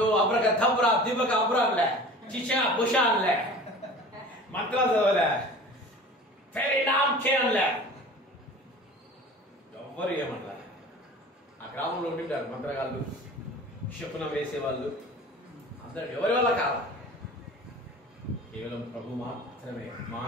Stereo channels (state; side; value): normal; both; correlation 0.41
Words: అబ్రక థబ్రా దిబక అబ్రాన్లే చిషా బుషాన్లే మంత్రాలు చదవలే, ఎవ్వరు ఏమన్నా. ఆ గ్రామంలో ఉండింటారు మంత్రగాళ్ళు, శకునం వేసేవాళ్ళు, అందరూ ఎవరి వల్ల కాదు, కేవలం ప్రభు మాత్రమే.